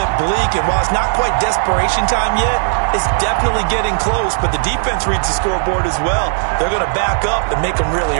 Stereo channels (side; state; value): left; silent; digital silence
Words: bleak. And while it's not quite desperation time yet, it's definitely getting close. But the defense reads the scoreboard as well. They're going to back up and make them